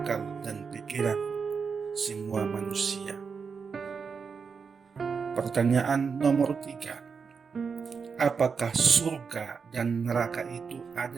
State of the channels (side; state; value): left; quieter; 5.6 dB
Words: dan pikiran semua manusia. Pertanyaan nomor 3. Apakah surga dan neraka itu